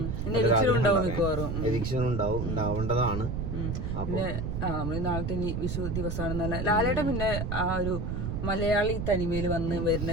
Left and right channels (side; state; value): right; noise; rumble, 3 dB below the sound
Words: എവിക്ഷൻ ഉണ്ടാവേണ്ടതാണ്. പിന്നെ നമ്മള് നാളത്തെ ഇനി വിഷു ദിവസമാണ്. ലാലേട്ടൻ പിന്നെ ആ ഒരു മലയാളി തനിമയിൽ വന്ന് വരുന്ന